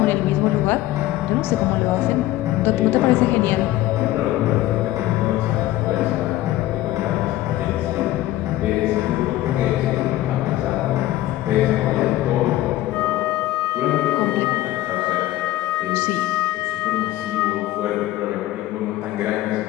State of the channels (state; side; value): quieter; right; 15.5 dB